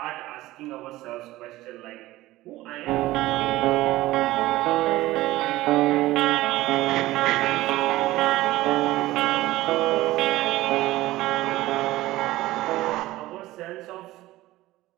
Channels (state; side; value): quieter; left; 17.2 dB